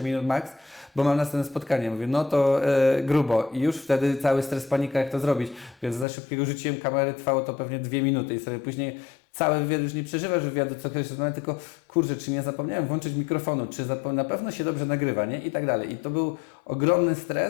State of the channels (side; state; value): right; drops out; at 6.1 s